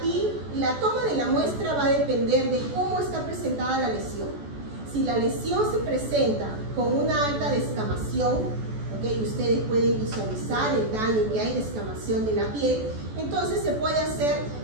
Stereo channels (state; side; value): late; left; 14 ms